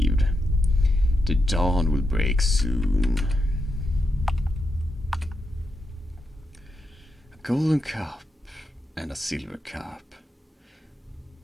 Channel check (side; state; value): both; normal; correlation 0.84